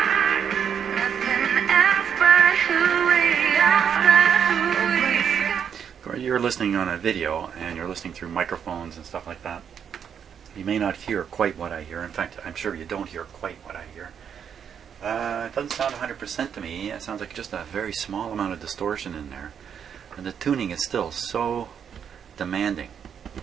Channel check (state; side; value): quieter; left; 7.9 dB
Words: You're listening on a video and you're listening through microphones and stuff like that. You may not hear quite what I hear. In fact, I'm sure you don't hear quite what I hear. It doesn't sound 100% to me. It sounds like just a very small amount of distortion in there. And the tuning is still so demanding.